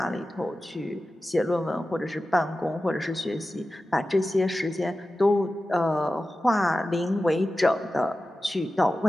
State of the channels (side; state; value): both; normal; correlation 0.94